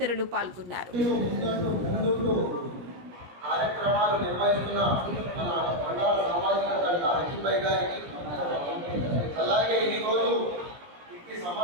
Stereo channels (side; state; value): left; late; 17 ms